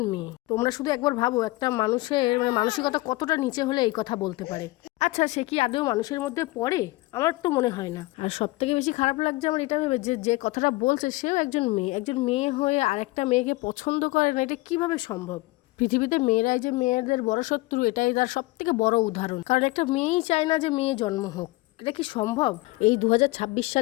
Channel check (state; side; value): quieter; right; 21.2 dB